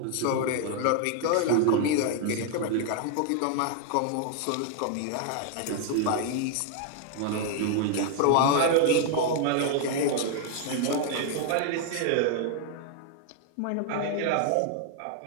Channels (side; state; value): both; different; correlation 0.00